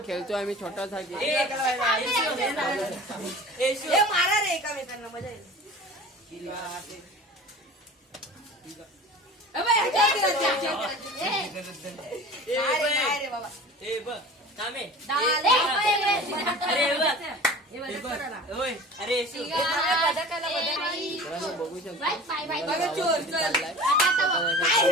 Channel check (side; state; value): both; normal; correlation 0.39